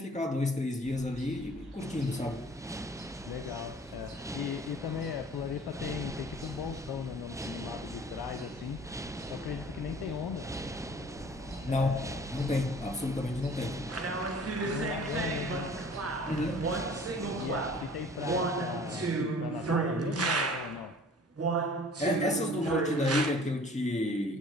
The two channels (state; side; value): normal; both; correlation 0.49